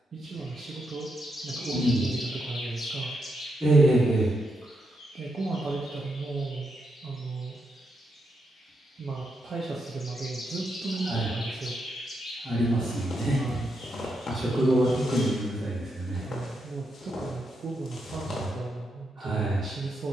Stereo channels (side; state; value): both; normal; correlation 0.82